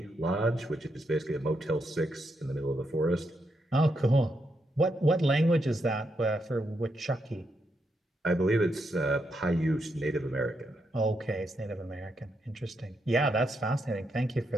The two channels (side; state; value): both; normal; correlation 0.81